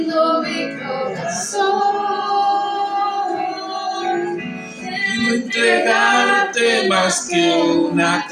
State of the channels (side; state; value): both; identical; correlation 1.00